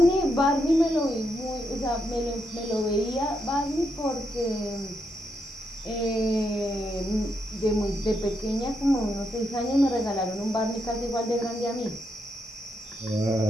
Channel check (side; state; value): both; normal; correlation 0.81